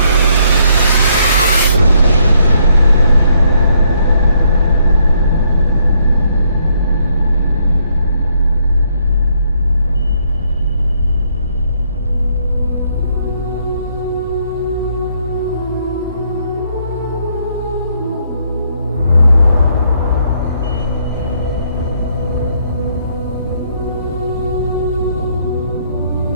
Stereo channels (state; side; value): inverted; both; correlation -0.71